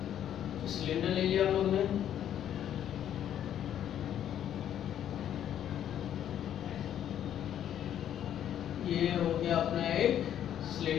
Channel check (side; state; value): right; quieter; 10.4 dB